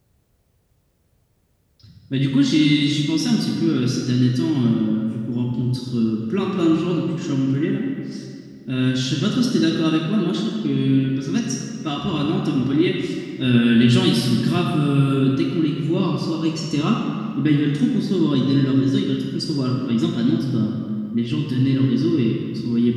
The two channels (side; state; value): both; identical; correlation 1.00